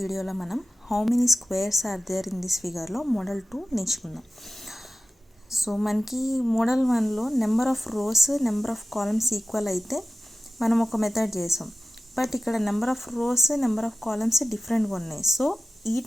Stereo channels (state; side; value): normal; both; correlation 0.96